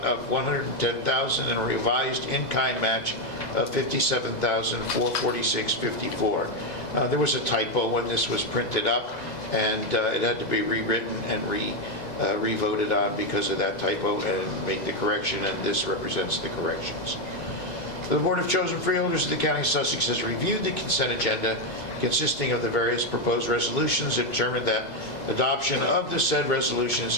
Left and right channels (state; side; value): late; right; 2.0 ms